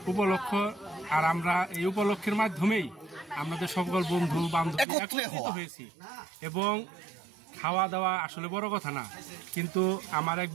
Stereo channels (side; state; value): left; drops out; at 4.9 s